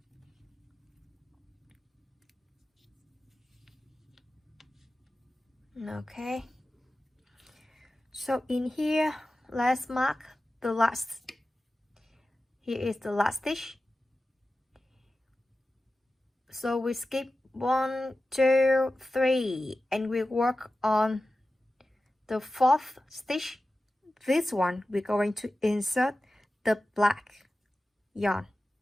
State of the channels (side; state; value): both; normal; correlation 0.94